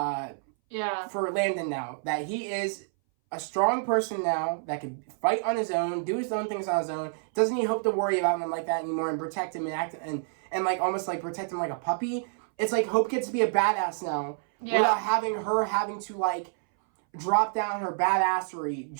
Landon now. That he is a strong person now that can fight on his own, do his own things on his own. Doesn't need Hope to worry about him like that anymore and protect him and act and like almost like protect him like a puppy. It's like Hope gets to be a badass now without having to like drop down her badassery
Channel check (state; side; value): silent; left; 59 dB below the other